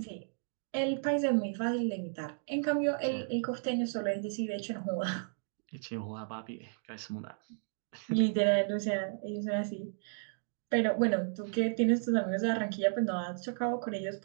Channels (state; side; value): silent; left; digital silence